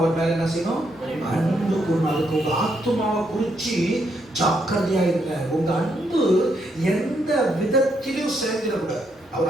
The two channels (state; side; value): normal; both; correlation 0.76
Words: மேல என்ன செய்யணும்? அன்பு கூறணும். அதுக்கு உங்க ஆத்துமாவை குறிச்சு ஜாக்கிரதையா இருங்க. உங்க அன்பு எந்த விதத்திலும் சேர்ந்துடக்கூடாது.